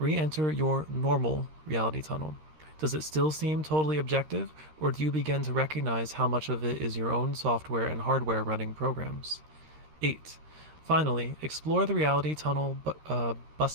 your normal reality tunnel. Does it still seem totally objective, or do you begin to recognize how much of it is your own software and hardware running programs? 8. Finally, explore the reality tunnel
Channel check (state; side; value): late; left; 13 ms